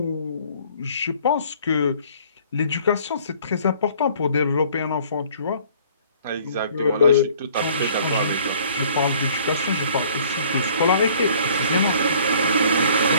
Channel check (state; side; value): inverted; both; correlation -0.56